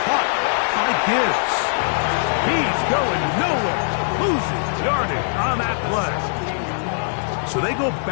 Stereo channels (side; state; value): right; silent; digital silence